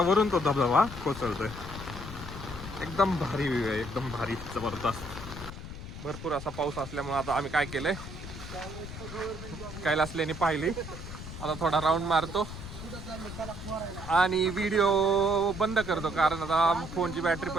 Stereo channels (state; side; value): noise; left; rumble, 10 dB below the sound